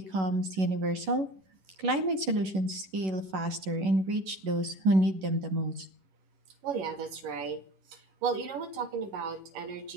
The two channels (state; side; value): late; left; 11 ms